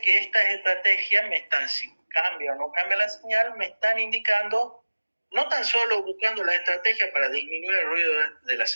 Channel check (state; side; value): inverted; both; correlation -1.00